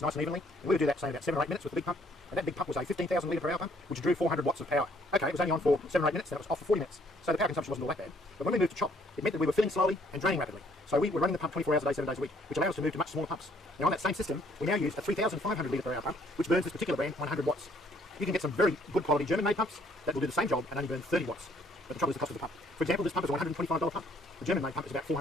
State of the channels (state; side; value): normal; both; correlation 0.64